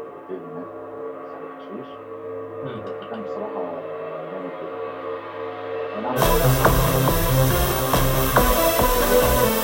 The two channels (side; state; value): both; identical; correlation 1.00